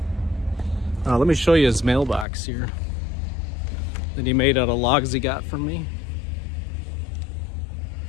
Let me show you his mailbox here. that he made out of logs he got from me.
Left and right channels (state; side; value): drops out; right; at 2.2 s